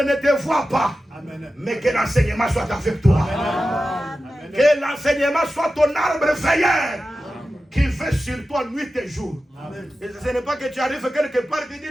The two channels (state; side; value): normal; both; correlation 0.93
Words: te voit pas, mais que l'enseignement soit avec toi. Que l'enseignement soit ton arbre veilleur qui veille sur toi nuit et jour. Et ce n'est pas que tu arrives quelque part et tu